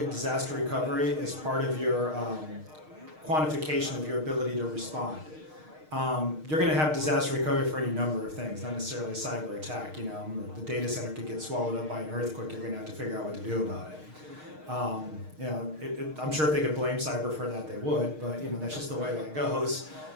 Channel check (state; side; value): late; left; 6.5 ms